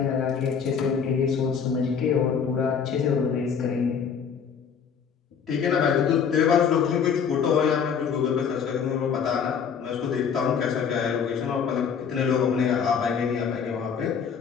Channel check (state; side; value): quieter; right; 6.9 dB